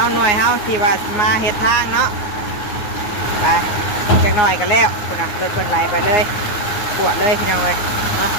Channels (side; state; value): right; late; 9.6 ms